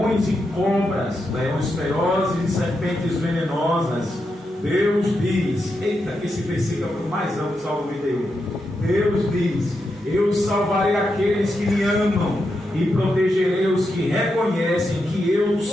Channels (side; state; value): both; normal; correlation 0.85